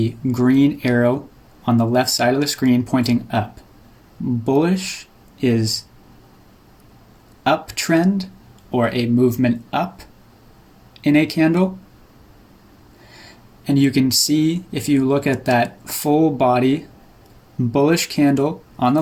green arrow on the left side of the screen pointing up, bullish is uptrend or a movement up in a candle. And you can see, if you look at that full body bullish candle on the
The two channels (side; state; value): both; identical; correlation 1.00